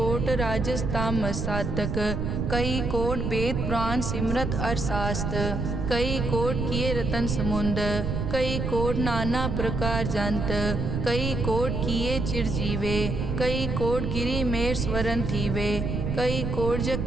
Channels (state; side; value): noise; right; rumble, 2 dB below the sound